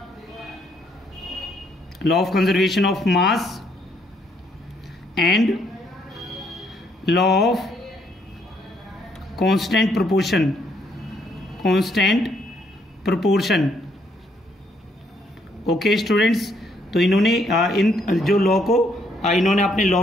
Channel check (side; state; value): both; normal; correlation 0.70